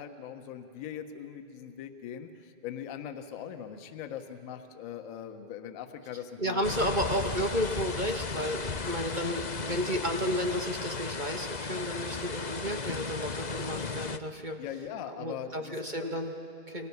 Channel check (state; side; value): late; left; 2.0 ms